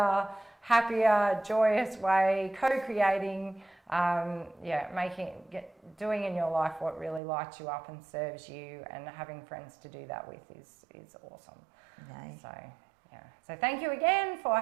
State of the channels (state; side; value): drops out; left; at 7.2 s